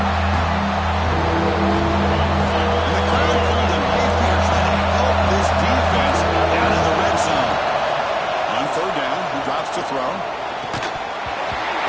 And the crowd pulled him Mayfield trying to help this defense out of the red zone. On third down, he drops to throw.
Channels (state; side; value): identical; both; correlation 1.00